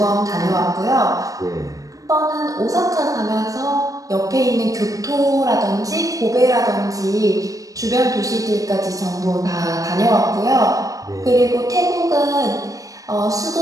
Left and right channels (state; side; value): late; left; 0.17 ms